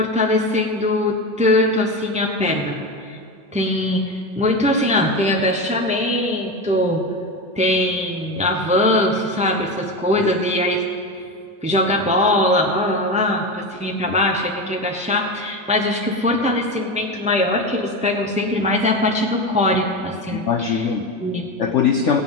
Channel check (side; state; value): both; normal; correlation 0.19